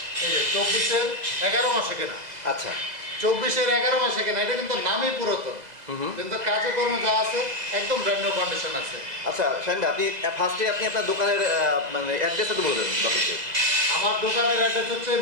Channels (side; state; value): left; late; 2.0 ms